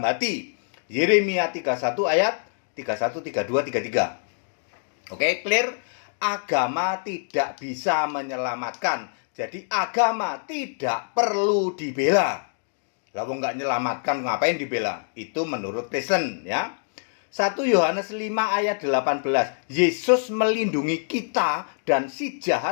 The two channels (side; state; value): right; silent; digital silence